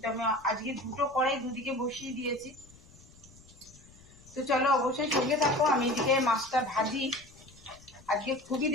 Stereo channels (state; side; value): noise; left; rumble, 24 dB below the sound